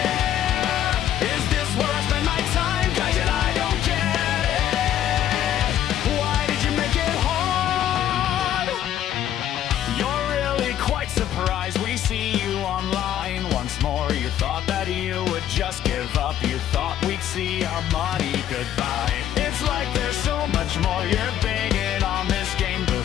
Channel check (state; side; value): quieter; right; 11.2 dB